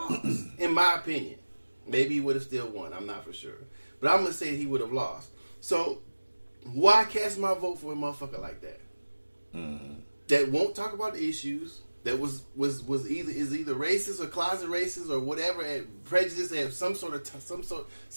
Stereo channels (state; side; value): inverted; both; correlation -1.00